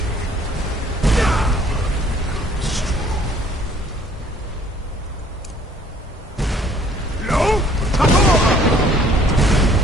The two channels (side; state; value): both; normal; correlation 0.58